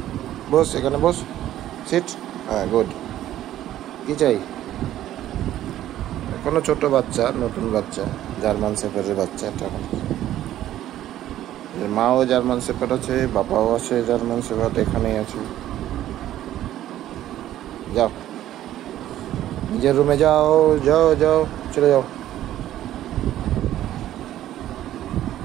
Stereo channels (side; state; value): left; quieter; 12.9 dB